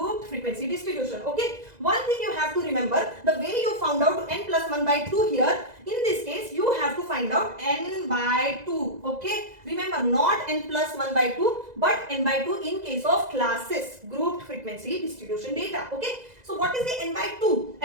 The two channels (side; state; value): left; late; 2.0 ms